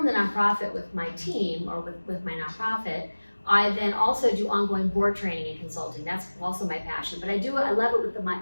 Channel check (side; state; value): both; inverted; correlation -1.00